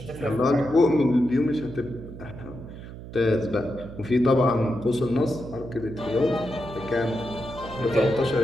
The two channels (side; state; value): right; noise; hum, 13 dB below the sound